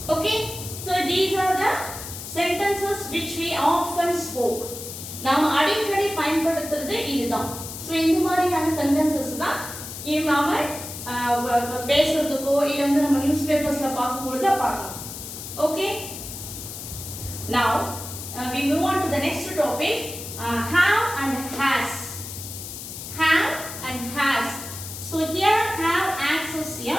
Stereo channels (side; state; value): left; noise; hiss, 10 dB below the sound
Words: Okay, so these are the sentences which we often spoke. நாம அடிக்கடி பயன்படுத்துறது இதுதான். சோ இந்த மாதிரியான sentences தான் நாம பேசுறதுக்கோ இல்ல வந்து நம்ம நியூஸ் பேப்பர்ஸ்ல பார்க்கும்போது பார்க்கலாம். Okay, now we move on to the next topic, have and has. Have and has. So here have acts as